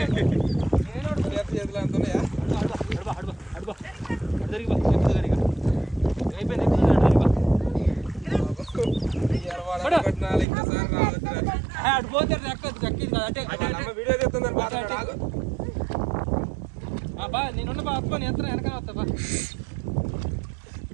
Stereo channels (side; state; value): left; drops out; at 10.5 s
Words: చేతులు అంటున్నాయా? అడిపోతే వీడియో చెప్తుందని బా నేనున్న బా అత్తుకొని ఎంత వెనకాల వస్తా బా.